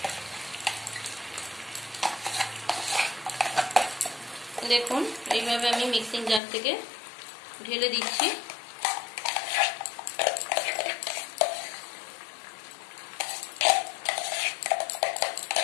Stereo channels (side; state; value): right; drops out; at 6.4 s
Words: দেখুন এইভাবে আমি মিক্সিং জার থেকে ঢেলে দিচ্ছি।